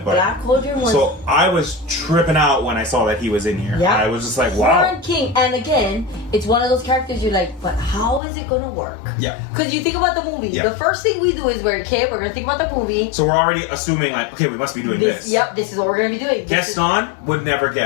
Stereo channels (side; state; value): right; drops out; at 8.2 s